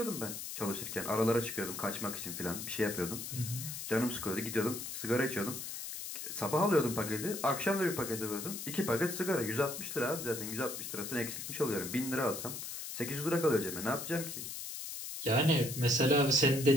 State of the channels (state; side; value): noise; left; hiss, 7 dB below the sound